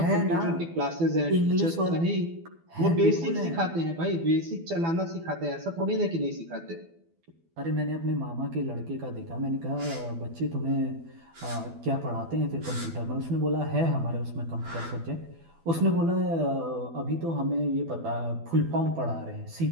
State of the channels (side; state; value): left; late; 12 ms